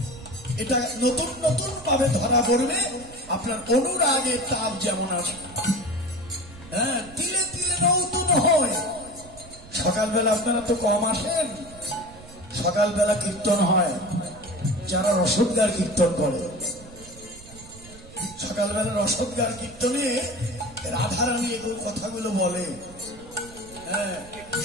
এটা নতুন নতুন ভাবে ধরা পড়বে। আপনার অনুরাগের তাপ যেমন আছে, হ্যাঁ, তিলে তিলে নতুন হয়। সকালবেলা আপনারা তো কম আসেন, সকালবেলা কীর্তন হয়, যারা রসদগার কীর্তন করে, সকালবেলা রসদগার কীর্তনে রাধারানী এগুলো কথাগুলো বলে। হ্যাঁ,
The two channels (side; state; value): right; noise; rumble, 19 dB below the sound